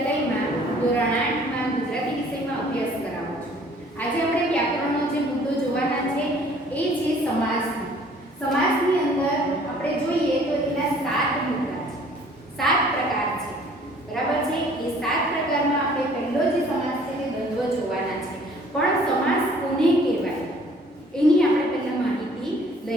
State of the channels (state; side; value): normal; both; correlation 0.55